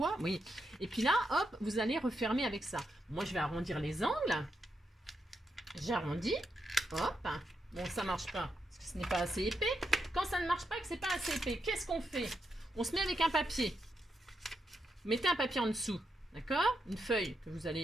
oui. Et puis là, hop, vous allez refermer avec ça. Moi, je vais arrondir les angles. J'arrondis. Hop. Bon, ça marche pas, parce que ce n'est pas assez épais. Quand ça ne marche pas, que c'est pas assez épais, qu'est-ce qu'on fait? On se met avec un papier. Vous mettez un papier en dessous, d'accord? Une feuille que vous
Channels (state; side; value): normal; both; correlation 0.83